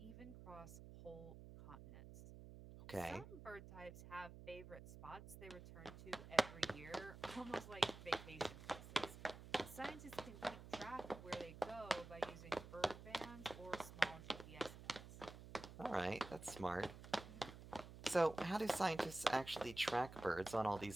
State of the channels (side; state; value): right; noise; hum, 13 dB below the sound